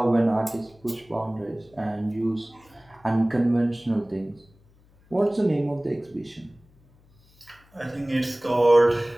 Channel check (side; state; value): left; noise; hum, 30 dB below the sound